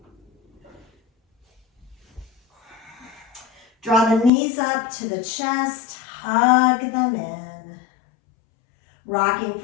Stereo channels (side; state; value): right; drops out; at 4.3 s